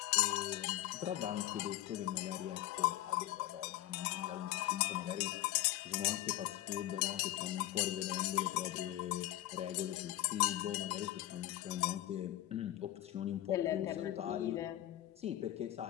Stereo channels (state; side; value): quieter; right; 14.5 dB